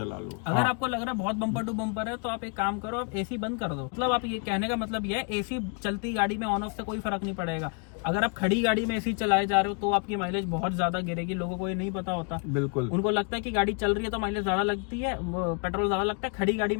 लो। अगर आपको लग रहा है बहुत बम्पर टू बम्पर है, तो आप एक काम करो, आप एसी बंद कर दो। मतलब आप ये कहने का मतलब ये है, एसी चलती गाड़ी में ऑन ऑफ से कोई फर्क नहीं पड़ेगा। अगर आप खड़ी गाड़ी में एसी चलाए जा रहे हो तो आपकी माइलेज बहुत ज्यादा गिरेगी। लोगों को ये नहीं पता होता। बिल्कुल, उनको लगता है कि गाड़ी चल रही है तो माइलेज ज्यादा लगती है, पेट्रोल ज्यादा लगता है। खड़ी गाड़ी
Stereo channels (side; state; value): right; quieter; 37.0 dB